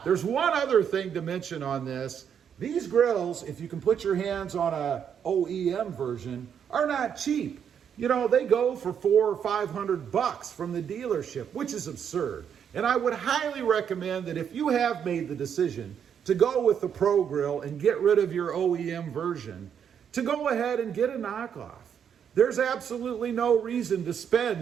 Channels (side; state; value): left; quieter; 8.1 dB